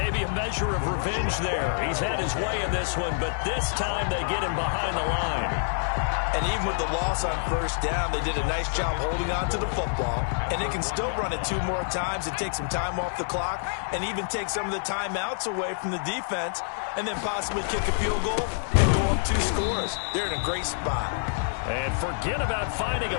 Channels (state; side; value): silent; right; 56 dB below the other